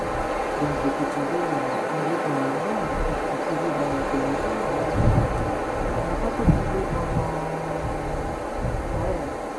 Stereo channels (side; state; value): both; identical; correlation 1.00